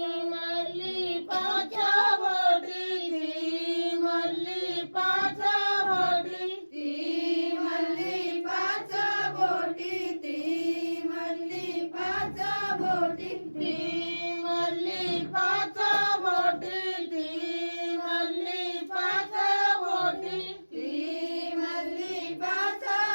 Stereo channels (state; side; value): inverted; both; correlation -1.00